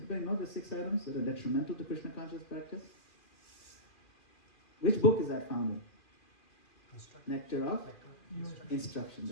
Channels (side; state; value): right; late; 2.4 ms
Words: know the 6 items that are detrimental to Krishna conscious practice? Which book is that found in? Nectar of Instruction,